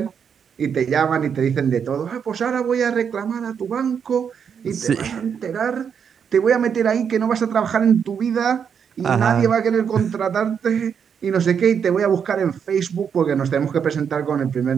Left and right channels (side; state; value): left; quieter; 7.3 dB